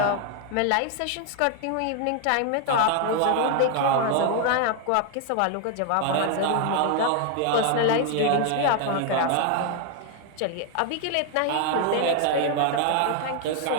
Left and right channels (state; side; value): different; both; correlation 0.00